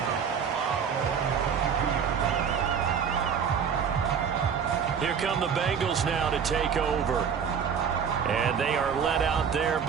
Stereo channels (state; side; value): quieter; left; 7.1 dB